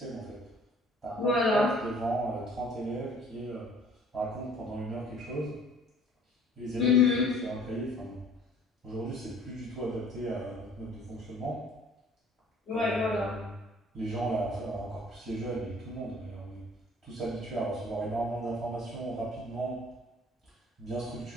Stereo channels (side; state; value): both; normal; correlation 0.54